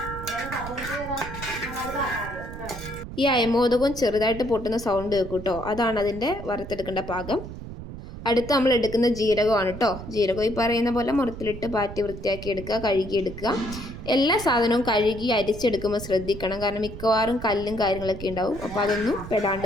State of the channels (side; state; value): right; noise; rumble, 11 dB below the sound